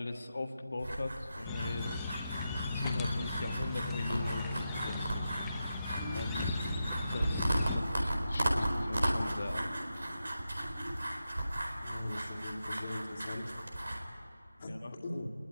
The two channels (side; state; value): both; inverted; correlation -0.89